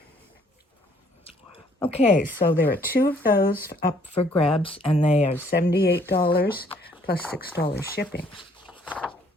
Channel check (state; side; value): normal; both; correlation 0.62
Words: Okay, so there are 2 of those up for grabs, and they are $78 plus $6 shipping.